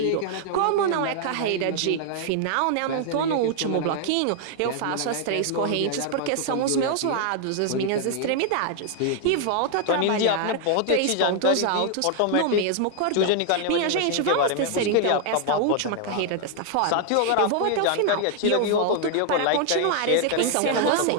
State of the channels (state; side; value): different; both; correlation 0.00